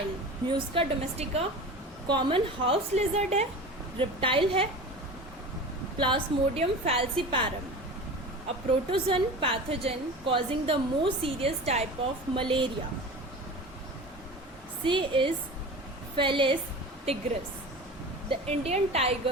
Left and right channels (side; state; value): both; normal; correlation 0.34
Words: Musca domestica common house lizard है, रिप्टाइल है। Plasmodium falciparum, a protozoan pathogen causing the most serious type of malaria. C is felis tigris, the Indian